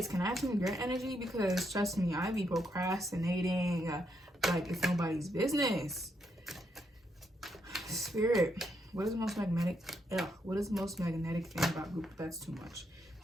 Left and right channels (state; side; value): normal; both; correlation 0.78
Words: can I have some of your energy? Because trust me, I be procrastinating like it's nobody's business. Spirit, what is the most magnetic? What is the most magnetic thing about group? That's too much.